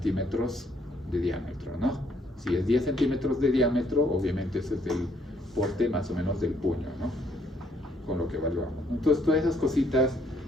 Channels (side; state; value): both; normal; correlation 0.68